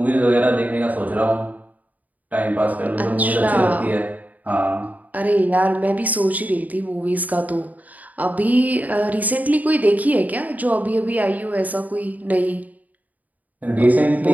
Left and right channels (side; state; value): left; late; 0.077 ms